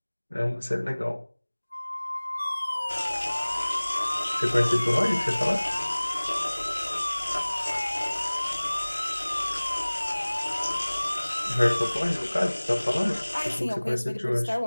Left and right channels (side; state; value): both; inverted; correlation -1.00